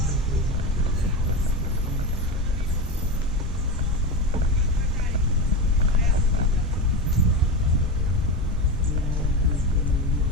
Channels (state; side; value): normal; both; correlation 0.19